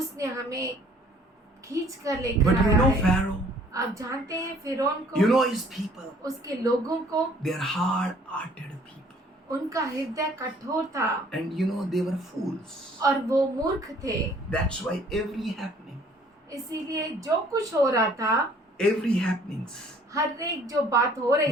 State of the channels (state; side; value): normal; both; correlation 0.57